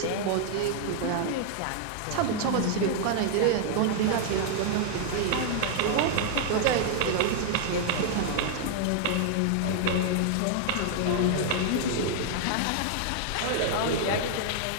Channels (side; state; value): both; different; correlation 0.00